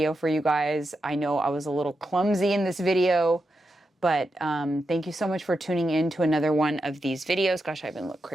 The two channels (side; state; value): both; normal; correlation 0.87